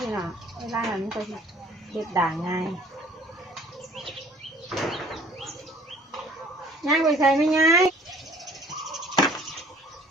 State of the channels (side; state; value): both; normal; correlation 0.53